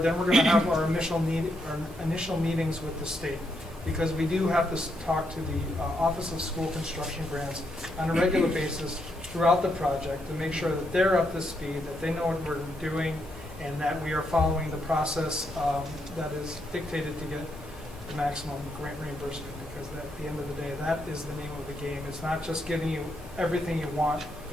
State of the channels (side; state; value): both; normal; correlation 0.79